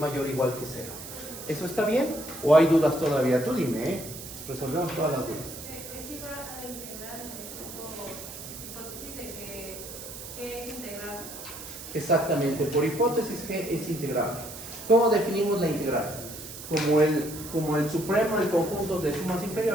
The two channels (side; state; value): right; noise; hiss, 12 dB below the sound